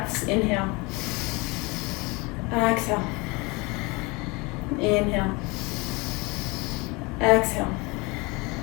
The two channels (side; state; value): right; quieter; 25.9 dB